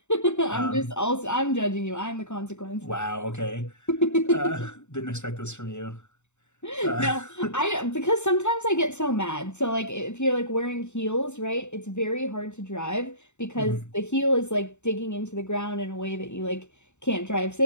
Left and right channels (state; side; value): late; right; 0.83 ms